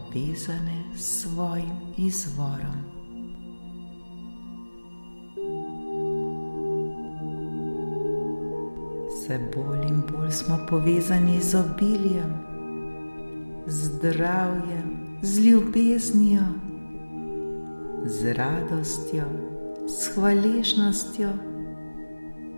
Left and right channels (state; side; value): inverted; both; correlation -1.00